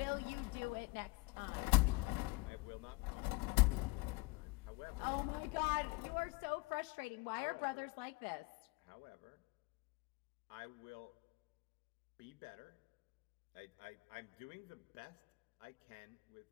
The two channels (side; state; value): right; quieter; 25.3 dB